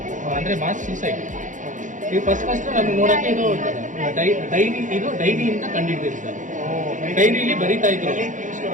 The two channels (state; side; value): late; left; 0.37 ms